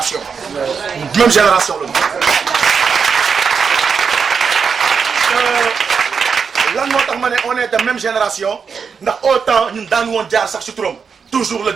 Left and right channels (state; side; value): quieter; left; 6.0 dB